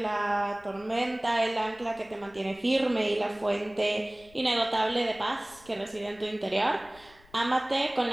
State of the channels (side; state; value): left; noise; rumble, 26 dB below the sound